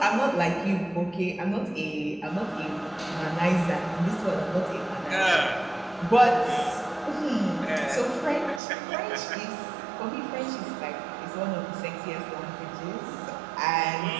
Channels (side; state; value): left; drops out; at 8.6 s